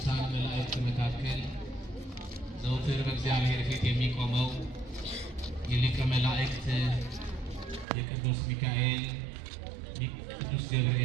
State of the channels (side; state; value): left; drops out; at 7.9 s